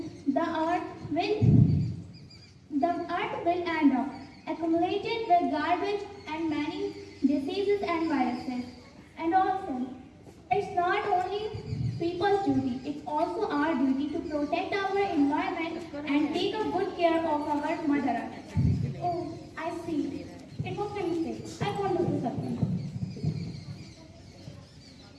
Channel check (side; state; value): both; identical; correlation 1.00